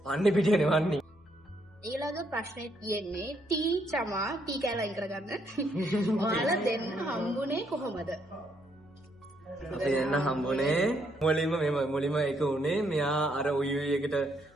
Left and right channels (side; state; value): left; noise; hum, 28 dB below the sound